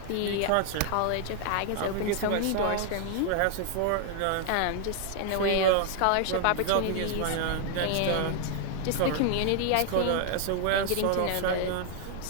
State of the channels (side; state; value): both; different; correlation 0.00